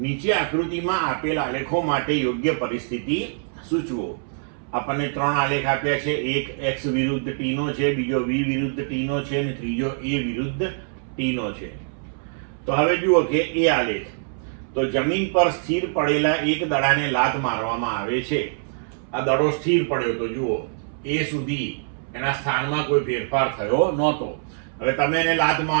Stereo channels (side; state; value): left; silent; 63 dB below the other